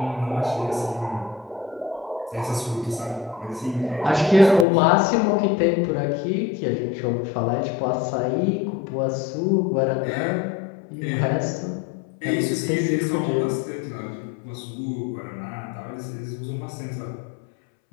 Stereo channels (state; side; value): drops out; right; at 4.7 s